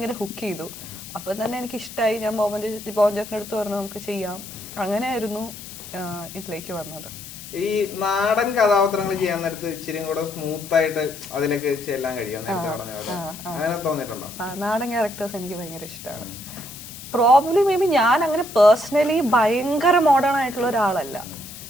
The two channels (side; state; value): left; noise; hiss, 14 dB below the sound